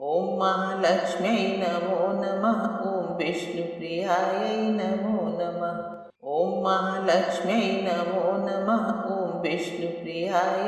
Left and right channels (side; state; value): both; identical; correlation 1.00